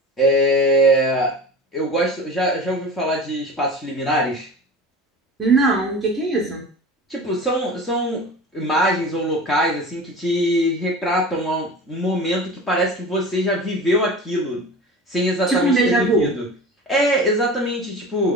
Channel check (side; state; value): both; normal; correlation 0.35